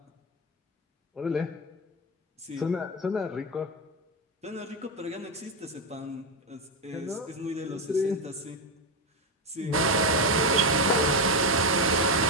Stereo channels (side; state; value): both; normal; correlation 0.09